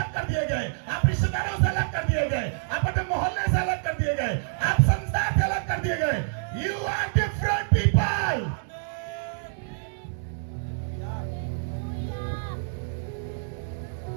कर दिए गए, आप रिश्तेदारों से अलग कर दिए गए, आप अपने मोहल्ले से अलग कर दिए गए, आप संसार से अलग कर दिए गए। You are different people.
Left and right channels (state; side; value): silent; left; digital silence